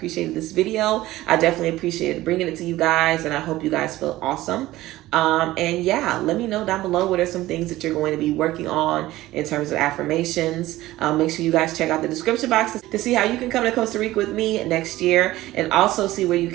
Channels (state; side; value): quieter; left; 16.6 dB